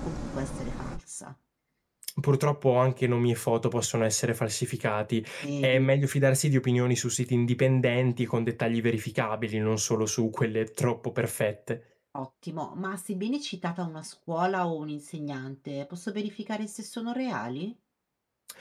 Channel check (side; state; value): both; identical; correlation 1.00